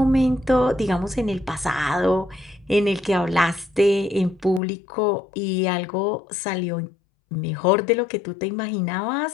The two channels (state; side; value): drops out; right; at 4.6 s